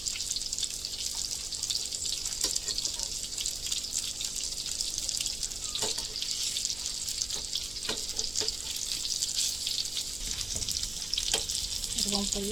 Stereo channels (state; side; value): noise; right; hum, 17 dB below the sound